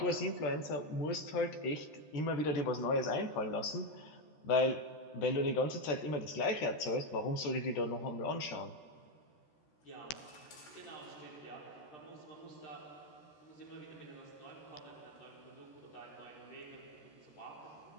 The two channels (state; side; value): late; right; 13 ms